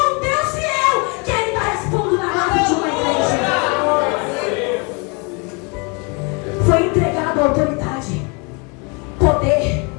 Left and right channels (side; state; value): right; quieter; 32.0 dB